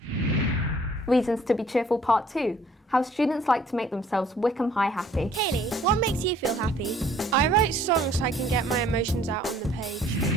Reasons to be cheerful, Part 2. How students like to make themselves Wickham High happy. Kaylee, what makes you feel happy? I write songs so I can get my emotions out on the page.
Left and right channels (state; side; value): normal; both; correlation 0.57